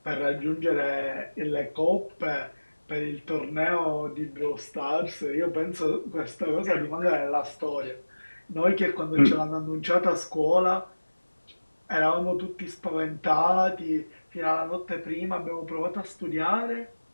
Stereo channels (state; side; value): inverted; both; correlation -1.00